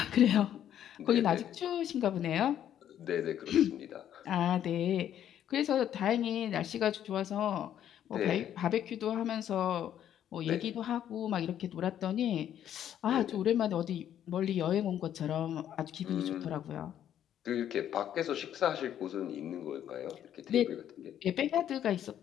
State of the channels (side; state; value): right; quieter; 10.4 dB